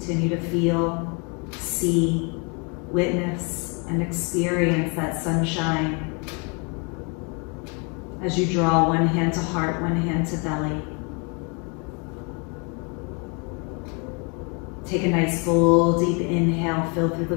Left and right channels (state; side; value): quieter; right; 32.9 dB